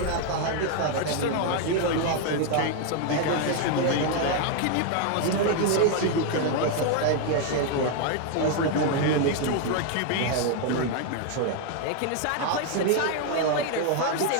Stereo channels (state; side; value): different; both; correlation 0.01